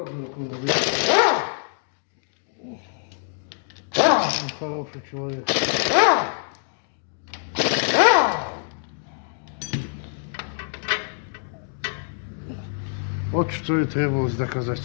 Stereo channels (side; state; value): right; silent; digital silence